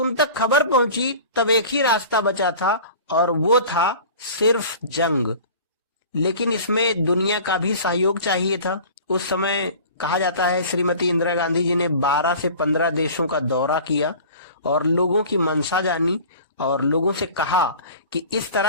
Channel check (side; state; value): both; inverted; correlation -0.41